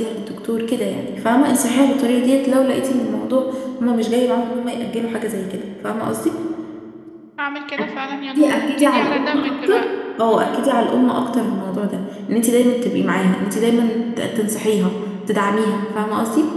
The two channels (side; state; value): both; identical; correlation 1.00